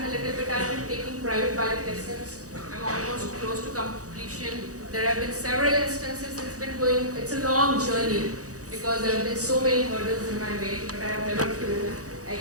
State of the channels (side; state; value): left; late; 0.66 ms